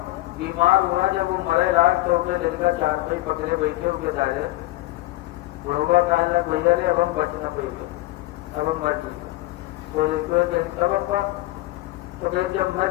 بیمار ہوا، جب وہ مرے لاگ تو اپنے دل کا 4 پائی پکڑے بیٹھے ہو کے دائرے. بڑھوا کہنے لگا بھیا رے اب ہم بچ نہ پائیں گے، اب ہم مر جائیں گے. تو دیکھو تب ابا تو کہ جب مر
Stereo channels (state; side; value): quieter; right; 18.4 dB